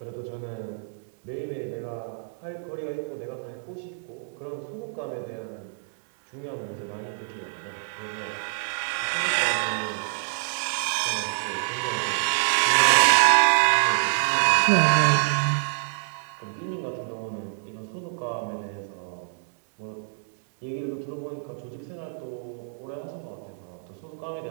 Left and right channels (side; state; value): left; silent; digital silence